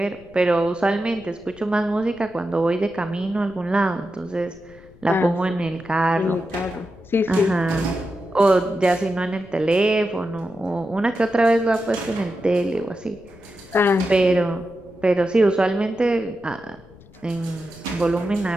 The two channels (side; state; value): left; noise; rumble, 24 dB below the sound